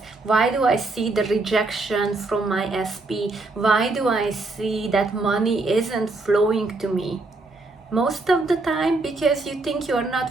Why do I see the rejection from my SP? Why do I see that money isn't flowing to me? Most of the time because you think you are not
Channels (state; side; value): quieter; left; 3.3 dB